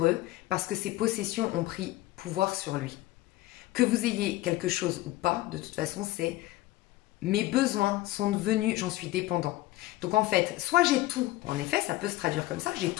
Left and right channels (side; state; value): right; quieter; 17.3 dB